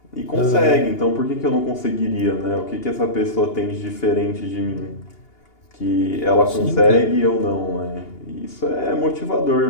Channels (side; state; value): right; late; 2.8 ms